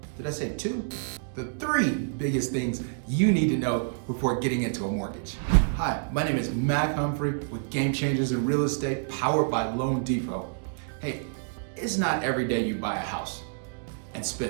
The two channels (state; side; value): silent; left; digital silence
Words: did I say two? The three biggest things you need to know before getting into a mortgage. Hi, my name is Mack Humphrey with Game Changers in Real Estate, powered by Loan Depot. Hey, it's not every day you buy a house and